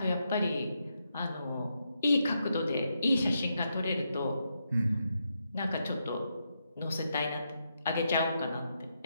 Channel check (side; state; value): both; inverted; correlation -0.82